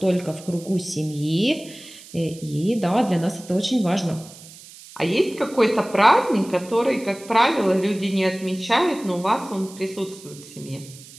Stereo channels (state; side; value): noise; right; hiss, 19 dB below the sound